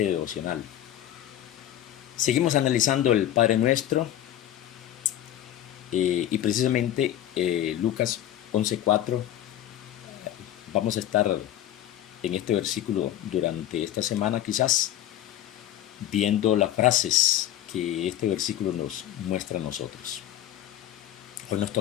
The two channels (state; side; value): quieter; right; 12.1 dB